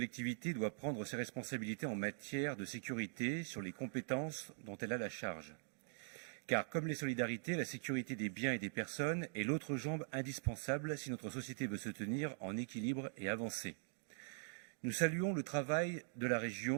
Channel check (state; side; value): silent; left; digital silence